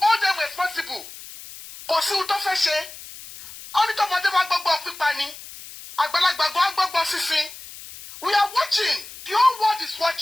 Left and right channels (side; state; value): left; noise; hiss, 15 dB below the sound